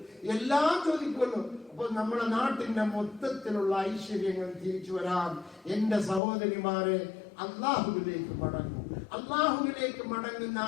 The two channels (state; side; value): drops out; right; at 6.2 s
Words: എല്ലാം ചോദിക്കുമല്ലോ. അപ്പൊ നമ്മുടെ നാട്ടിന്റെ മൊത്തത്തിലുള്ള ഐശ്വര്യങ്ങൾ തിരിച്ചു വരാൻ എന്റെ സഹോദരിമാരെ അള്ളാഹുവിലേക്ക് മടങ്ങും. അള്ളാഹുവിലേക്ക് മടങ്ങുന്ന